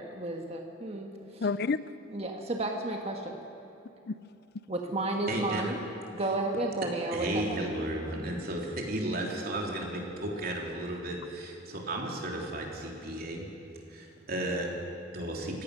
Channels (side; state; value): both; normal; correlation 0.32